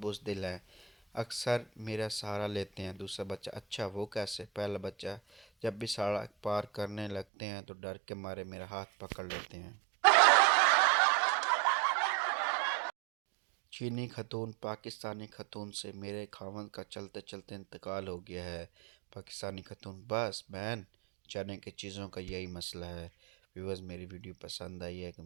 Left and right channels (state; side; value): drops out; left; at 7.2 s